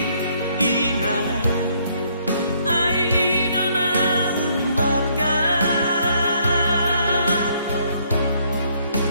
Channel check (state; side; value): inverted; both; correlation -0.68